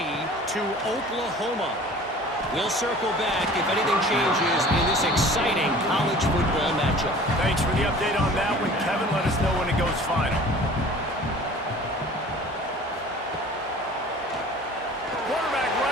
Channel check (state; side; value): normal; both; correlation 0.45